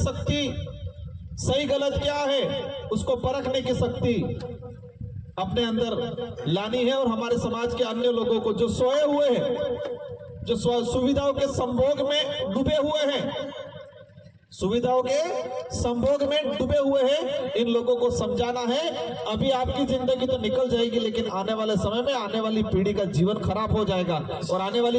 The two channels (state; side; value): identical; both; correlation 1.00